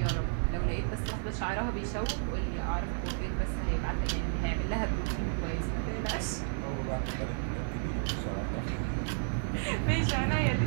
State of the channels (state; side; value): silent; left; 56 dB below the other